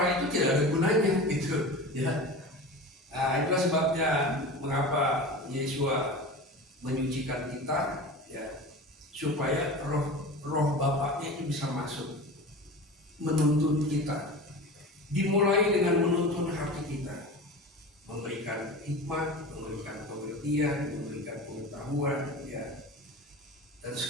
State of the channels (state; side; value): normal; both; correlation 0.32